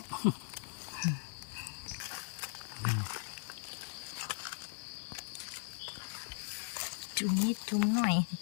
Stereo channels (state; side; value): silent; right; 52 dB below the other